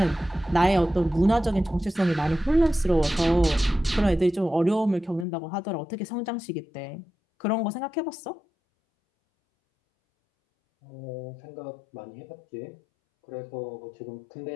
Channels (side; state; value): right; drops out; at 5.2 s